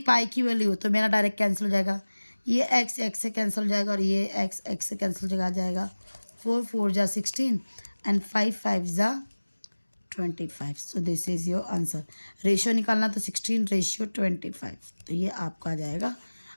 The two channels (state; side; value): inverted; both; correlation -1.00